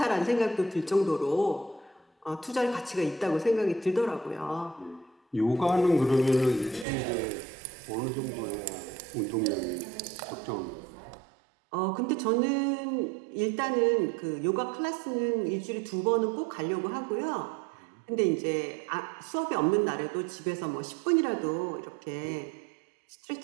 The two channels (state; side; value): drops out; left; at 6.9 s